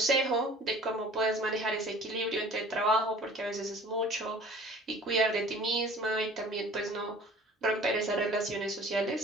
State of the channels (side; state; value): both; normal; correlation 0.48